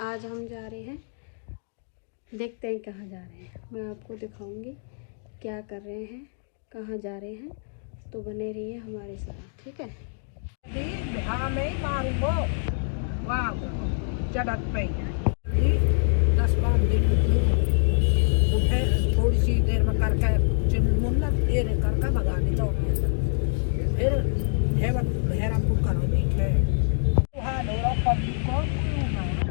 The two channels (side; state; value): right; silent; digital silence